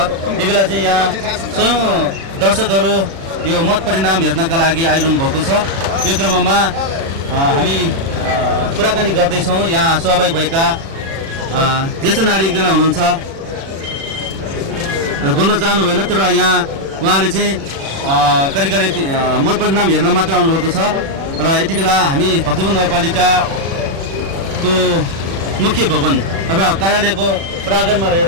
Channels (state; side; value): late; left; 36 ms